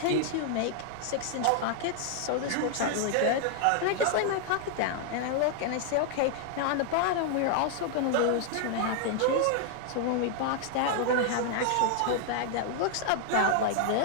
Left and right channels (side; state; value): both; different; correlation 0.00